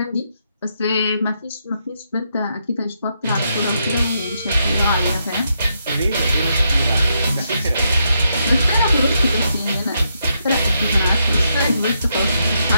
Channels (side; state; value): both; inverted; correlation -0.79